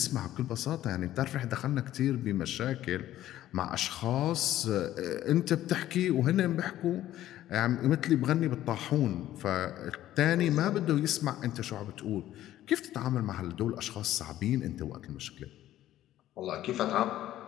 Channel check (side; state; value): right; quieter; 13.4 dB